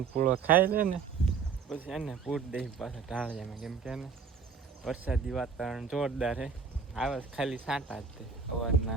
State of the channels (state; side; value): quieter; left; 5.6 dB